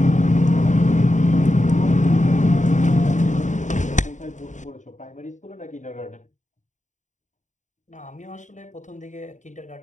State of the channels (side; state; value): right; late; 0.35 ms